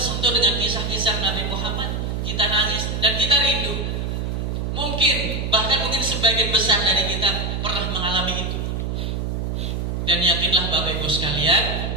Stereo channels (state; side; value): noise; right; hum, 2 dB below the sound